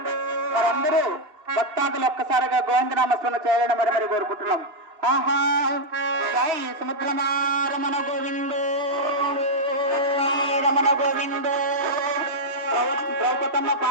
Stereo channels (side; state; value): left; late; 2.9 ms